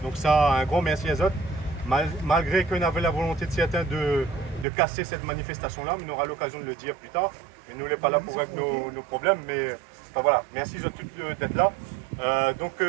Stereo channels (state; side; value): drops out; left; at 4.7 s